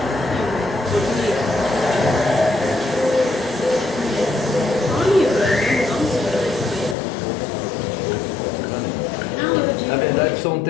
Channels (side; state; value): right; drops out; at 7.0 s